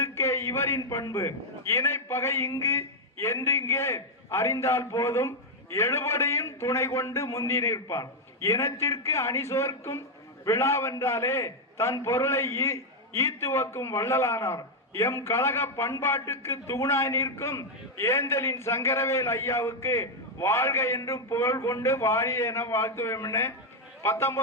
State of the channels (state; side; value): normal; both; correlation 0.01